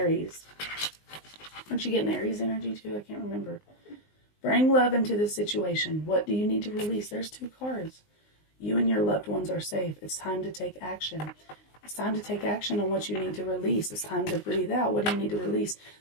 Aren't you getting Aries energy too? I can't remember. Bring love into the situation. What do you need to release? There's 2 cards. You and your loved ones are safe. It's time to take action. It's time to take action on what you need to release. It's time to breathe out. What do you need to release?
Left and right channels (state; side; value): late; right; 19 ms